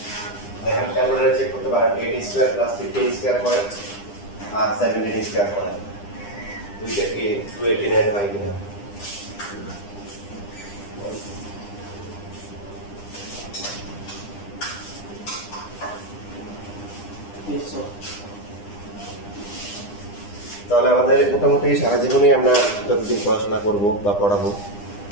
দেখেন ক্যালকুলেটরে চেক করতে পারেন 8 স্কয়ার প্লাস 15 স্কয়ার করে আর 17 স্কয়ার করে দুইটা কি 289 হয় কিনা। তাহলে আমাদের মোটামুটি সারা জীবনেই আমরা যতদিন পড়াশোনা করব বা পড়াবো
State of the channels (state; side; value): late; right; 9.9 ms